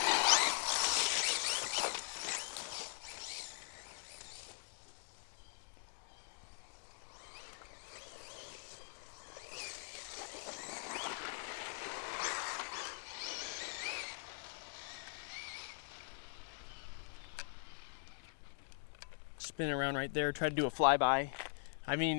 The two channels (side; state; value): right; silent; digital silence